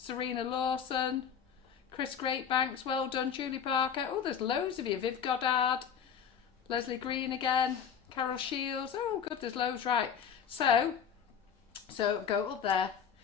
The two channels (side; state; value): right; quieter; 7.7 dB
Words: Lawson, Chris Greatbanks, well done. Julie Parker. Oh, there's loads of you. Viv Goddard, Leslie Green again, Carol Shields. Oh, good, there's loads, right. So go up there.